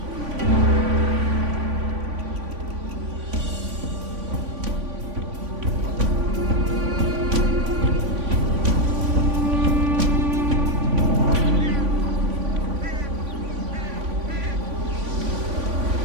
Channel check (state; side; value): late; left; 3.5 ms